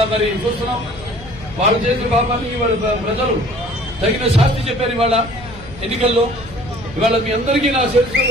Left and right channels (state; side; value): noise; left; hum, 17 dB below the sound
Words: మరి చూస్తున్నాం వాళ్ళు చేసిన పాపాన్ని ఇవాళ ప్రజలు తగిన శాస్తి చెప్పారు. ఇవాళ ఎన్నికల్లో ఇవాళ మీ అందరికీ నా